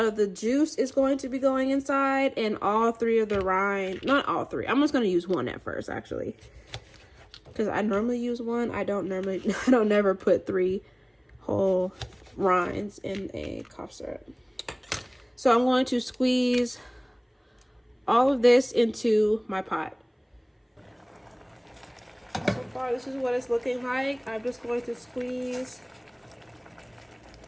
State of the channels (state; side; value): identical; both; correlation 1.00